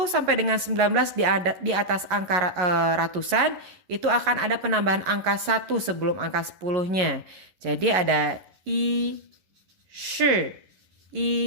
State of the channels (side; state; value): left; late; 11 ms